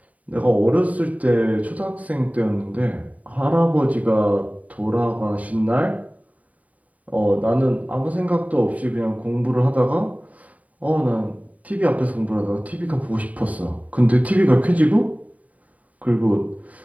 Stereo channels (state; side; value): late; left; 0.070 ms